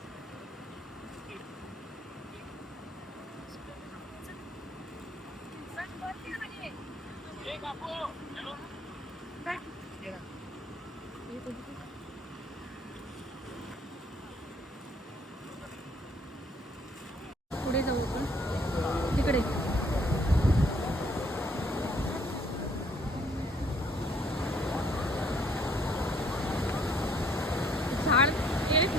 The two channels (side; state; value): both; normal; correlation 0.62